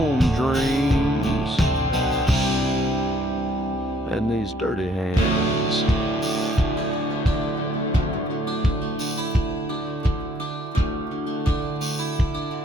dreams and these dirty hands.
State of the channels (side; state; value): both; normal; correlation 0.63